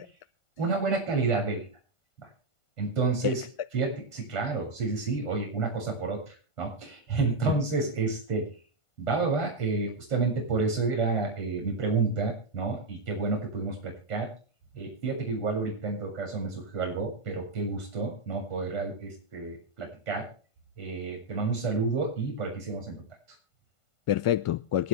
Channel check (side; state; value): right; late; 1.5 ms